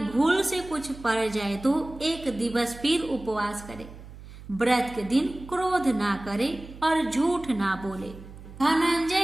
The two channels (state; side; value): noise; right; hum, 16 dB below the sound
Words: भूल से कुछ पड़ जाए तो एक दिवस फिर उपवास करे। व्रत के दिन क्रोध ना करे और झूठ ना बोले।